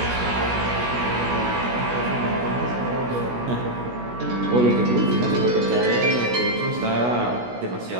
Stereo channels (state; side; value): late; left; 16 ms